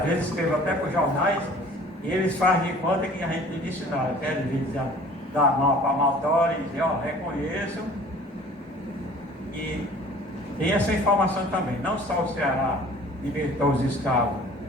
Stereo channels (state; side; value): normal; both; correlation 0.48